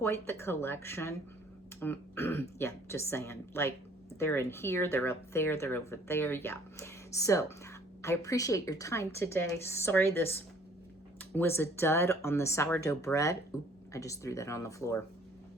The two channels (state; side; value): normal; both; correlation 0.57